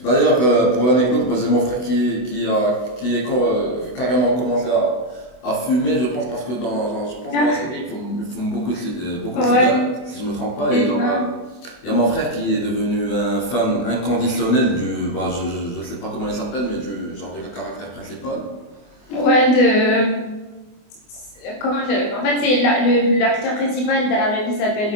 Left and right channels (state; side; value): late; right; 24 ms